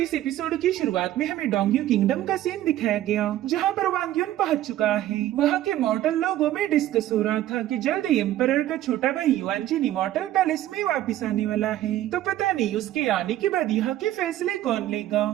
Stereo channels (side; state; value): left; quieter; 13.6 dB